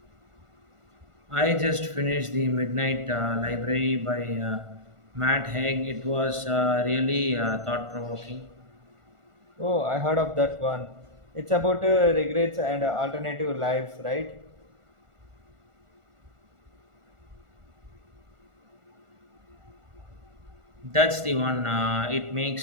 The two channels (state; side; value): late; left; 1.4 ms